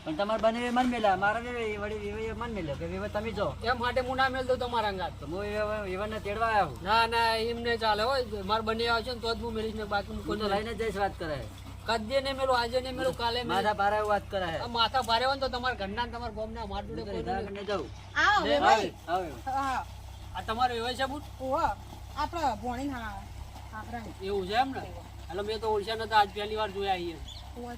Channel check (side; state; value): both; identical; correlation 1.00